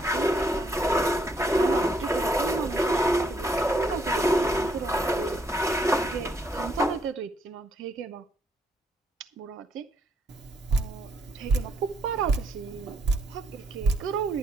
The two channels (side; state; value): both; normal; correlation 0.72